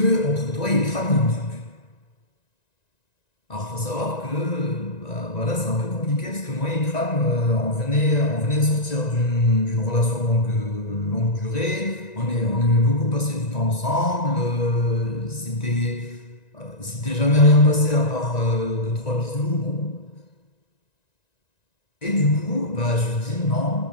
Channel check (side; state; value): right; late; 1.9 ms